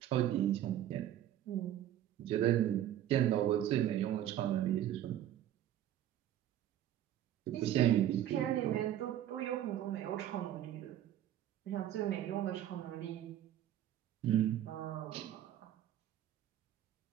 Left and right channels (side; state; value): left; quieter; 11.8 dB